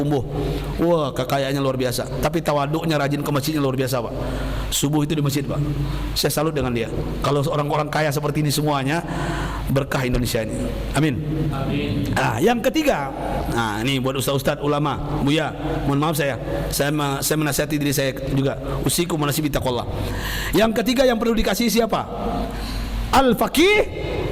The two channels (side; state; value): both; identical; correlation 1.00